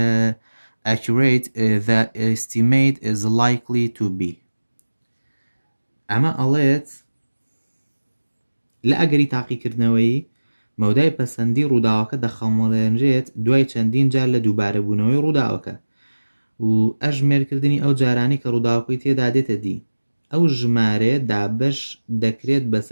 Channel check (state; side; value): inverted; both; correlation -1.00